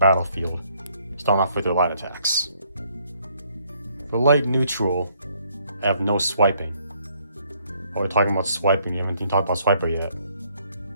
Starting off with your light attacks. For light neutral, I have no swiping. While we're talking about swiping, you haven't even talked about Swiper yet.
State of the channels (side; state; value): both; inverted; correlation -0.68